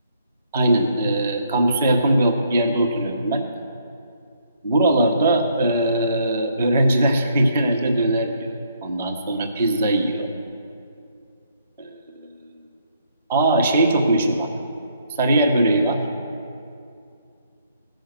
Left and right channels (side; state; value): both; inverted; correlation -0.69